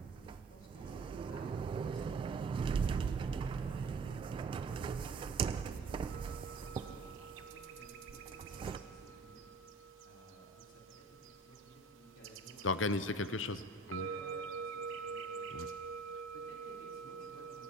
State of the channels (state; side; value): quieter; left; 3.3 dB